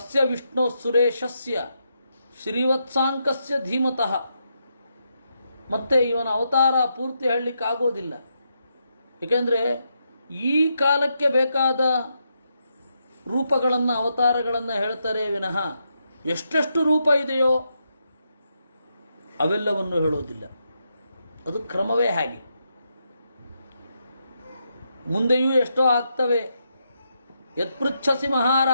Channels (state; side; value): inverted; both; correlation -0.82